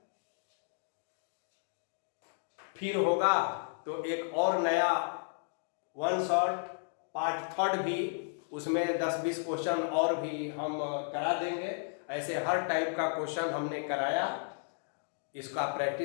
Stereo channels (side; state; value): right; silent; digital silence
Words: फिर होगा तो एक और नया वन शॉट पार्ट थर्ड भी, उसमें 10-20 क्वेश्चन और भी हम करा देंगे। ऐसे हर टाइप का क्वेश्चन हमने कराया, इसका